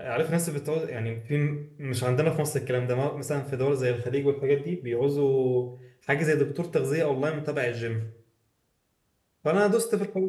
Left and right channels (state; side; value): identical; both; correlation 1.00